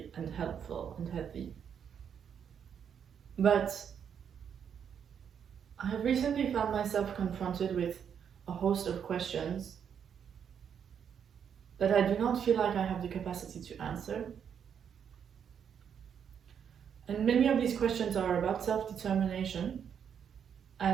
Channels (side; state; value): left; quieter; 7.9 dB